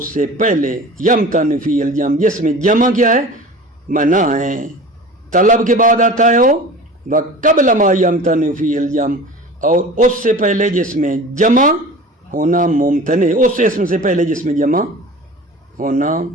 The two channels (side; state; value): both; normal; correlation 0.38